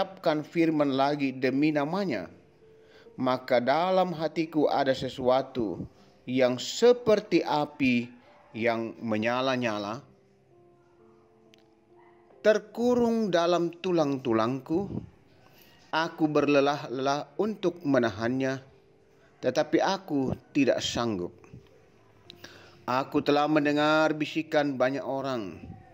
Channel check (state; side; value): identical; both; correlation 1.00